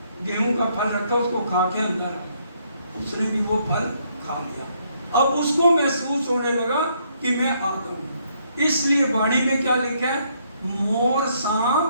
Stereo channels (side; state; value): both; inverted; correlation -0.71